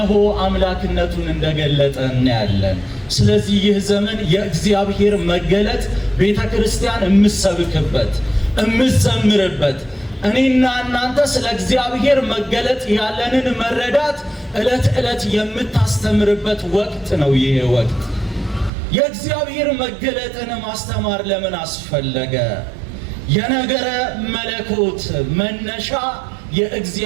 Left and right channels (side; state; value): left; drops out; at 18.7 s